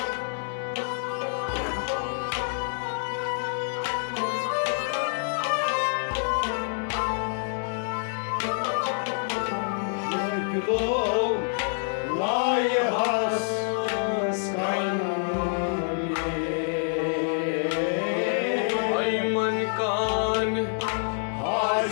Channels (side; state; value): right; silent; digital silence